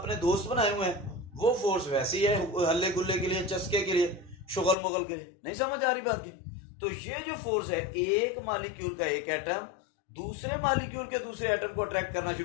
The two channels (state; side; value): drops out; right; at 4.8 s